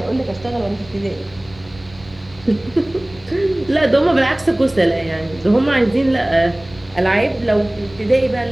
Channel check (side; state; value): right; noise; rumble, 22 dB below the sound